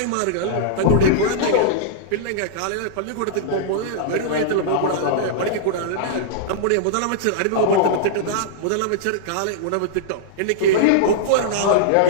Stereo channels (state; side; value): different; both; correlation -0.02